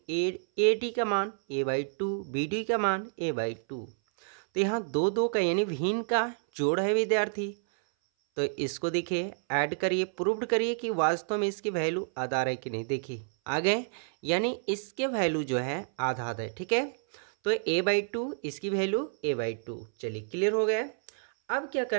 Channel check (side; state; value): left; silent; 58 dB below the other